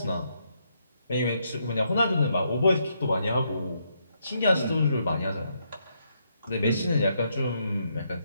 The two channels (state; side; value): inverted; both; correlation -0.77